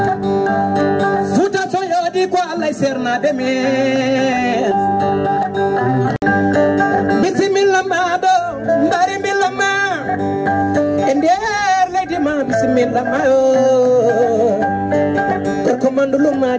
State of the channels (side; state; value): both; identical; correlation 1.00